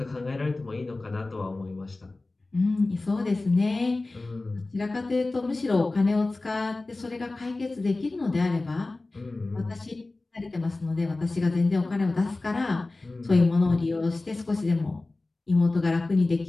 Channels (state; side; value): quieter; right; 3.2 dB